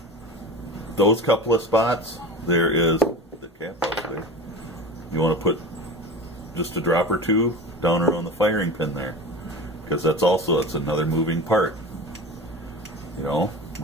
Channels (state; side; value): normal; both; correlation 0.31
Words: those couple of spots, there is the cap up there. You want to put just a drop or two down around the firing pin there, because that's another moving part. You know,